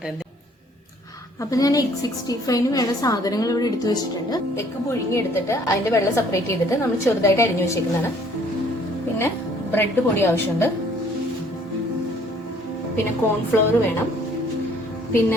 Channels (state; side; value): normal; both; correlation 0.59